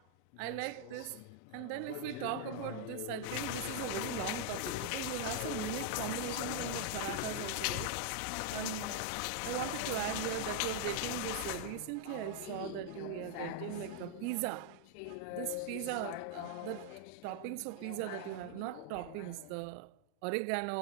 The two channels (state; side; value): different; both; correlation 0.00